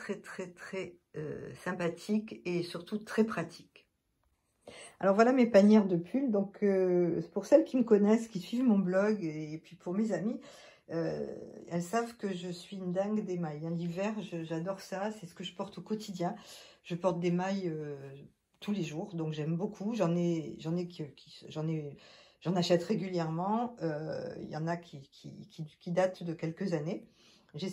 sympathiques et surtout très pratiques. Alors voilà mes panières de pulls. Donc pour celles qui me connaissent, qui suivent mon blog et puis pour mes amis, elles savent que je suis une dingue des mailles. Hein. L'hiver, j'adore ça, c'est ce que je porte au quotidien. Je porte des mailles tous les jours, donc j'aime beaucoup. J'en achète régulièrement. Il y en a qui datent de quelques années.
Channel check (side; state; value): both; identical; correlation 1.00